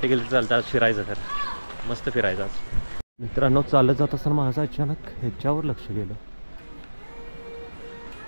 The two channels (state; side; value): inverted; both; correlation -1.00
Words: गेलं चालतं, आज फिरायचं तर मस्त फिरायचं आज. मित्रांनो, चालत जात असताना माझं अचानक ह्याच्यावर लक्ष गेलं.